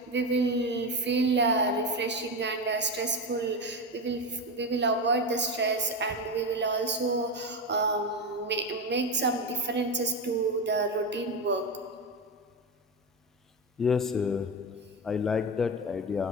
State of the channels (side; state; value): both; normal; correlation 0.16